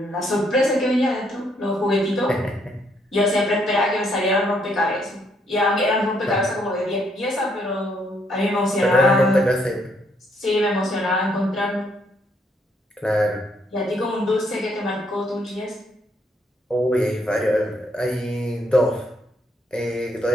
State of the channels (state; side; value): normal; both; correlation 0.71